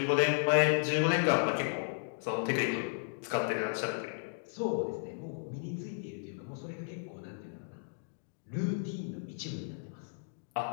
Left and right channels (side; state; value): right; silent; digital silence